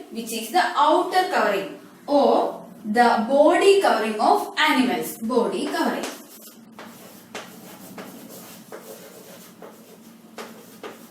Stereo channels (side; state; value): both; identical; correlation 1.00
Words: which is the outer covering or the body covering of animals. Body covering.